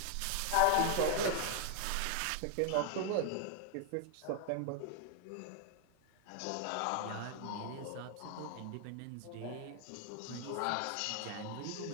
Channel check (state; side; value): different; both; correlation -0.01